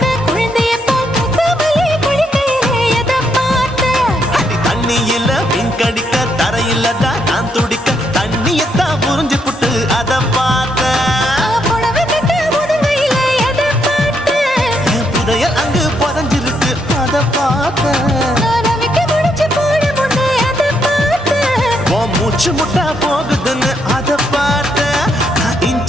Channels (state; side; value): normal; both; correlation 0.76